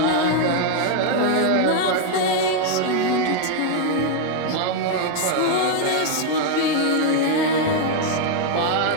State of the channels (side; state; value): both; different; correlation 0.00